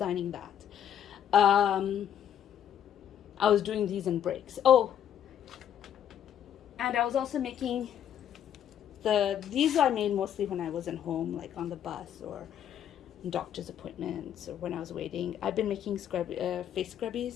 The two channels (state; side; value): quieter; right; 9.7 dB